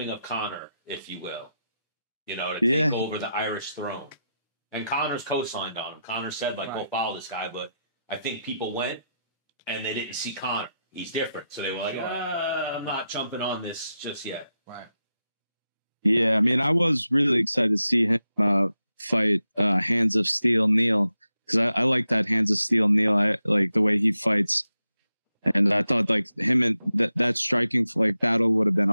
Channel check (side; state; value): both; inverted; correlation -0.88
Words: of Conor, if you will. You know, to take over the Irish throne. And Conor's co-signed on him. Conor said, like, go follow this guy. But I think people went and they didn't see Conor. He's different. So they were like, I'm not jumping on this just yet. Right. Yeah, I mean, I was really excited to see him fight Hands of Steel Neil because I like that Hands of Steel Neil. I like the way he fights. And I thought like him and that striking like battle would have been